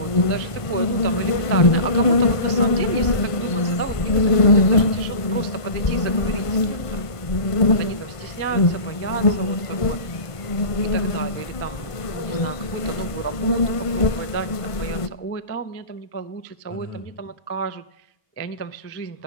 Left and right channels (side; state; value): right; late; 1.5 ms